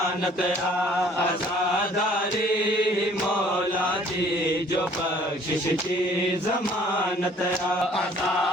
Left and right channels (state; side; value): normal; both; correlation 0.56